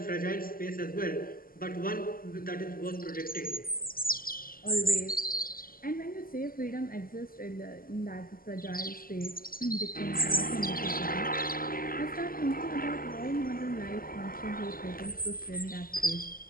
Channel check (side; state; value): right; late; 0.42 ms